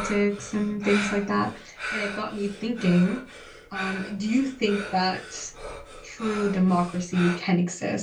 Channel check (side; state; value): both; identical; correlation 1.00